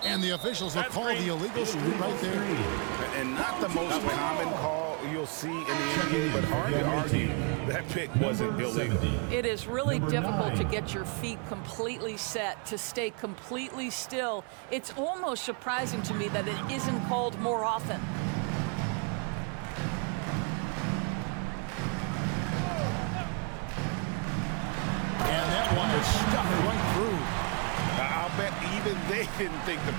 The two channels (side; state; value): left; quieter; 37.5 dB